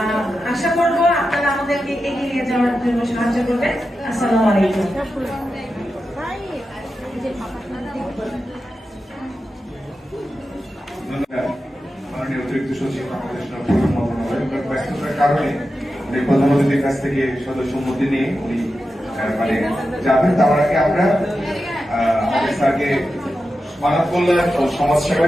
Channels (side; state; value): both; normal; correlation 0.91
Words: আশা করবো আপনারা আমাদেরকে এগিয়ে নিয়ে যাওয়ার জন্য সাহায্য করবেন। আসসালামু আলাইকুম। মাননীয় অতিরিক্ত সচিব বাংলাদেশ ব্যস্ততার কারণে উনি প্রধান অতিথির কাছ থেকে সদস্য সম্মতি নিয়ে উনি মানে যাবেন। তার আগে আমরা আমাদের স্যারকে মানব কল্যাণ ও সমাজ